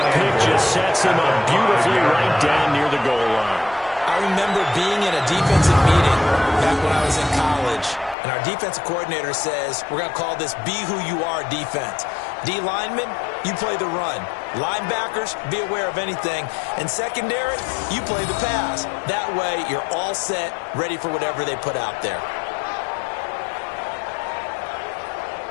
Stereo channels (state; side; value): drops out; right; at 8.2 s